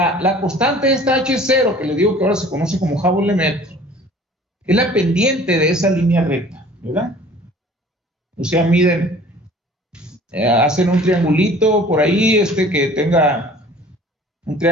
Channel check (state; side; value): normal; both; correlation 0.48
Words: constante esta H0, que les digo que ahora se conoce como Hubble-Lemaitre, es la pendiente de esa línea recta, ¿verdad? O sea, miden, hacen un triangulito por ahí, que tenga un